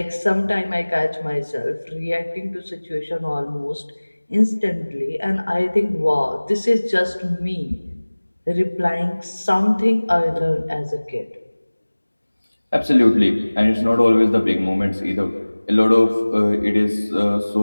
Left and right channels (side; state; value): both; inverted; correlation -1.00